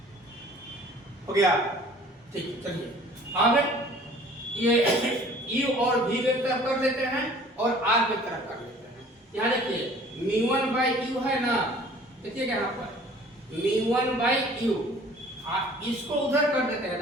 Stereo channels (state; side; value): normal; both; correlation 0.50